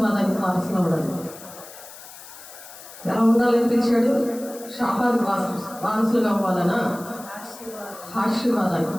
వారసులు అవ్వడానికి. ఎలా ఉండాలని పిలిచాడు? శాపానికి వారసులుగా అవ్వాలనా? ఆశీర్వాదానికి.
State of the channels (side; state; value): left; noise; hiss, 17 dB below the sound